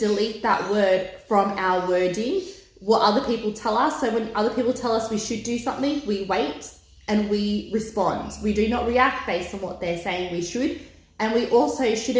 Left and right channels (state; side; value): identical; both; correlation 1.00